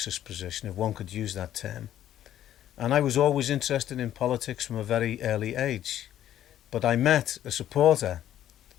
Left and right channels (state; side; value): quieter; right; 11.8 dB